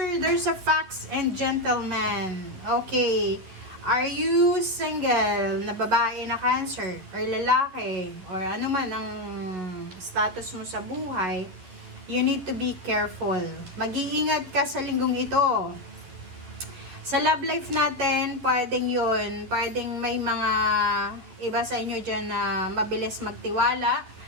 there's a fox and gentleman. Okay. Are you single na babae na Cancer? Or lalaki? Or ano man ang status mo sa buhay? You need to be careful. Mag-iingat ka sa linggong ito. Sa love life natin, pwedeng yun. Pwedeng may mga iba sa inyo dyan na mabilis magtiwala.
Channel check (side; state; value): left; late; 11 ms